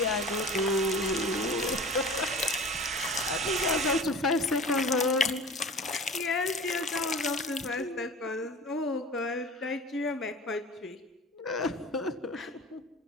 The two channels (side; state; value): both; normal; correlation 0.39